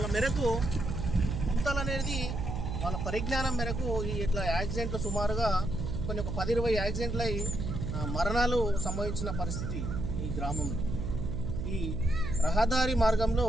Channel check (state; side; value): noise; right; hum, 3 dB below the sound